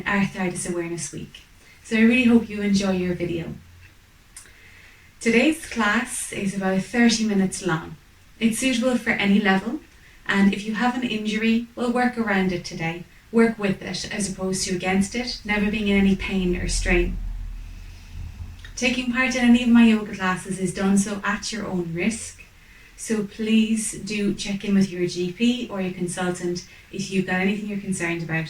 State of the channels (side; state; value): both; identical; correlation 1.00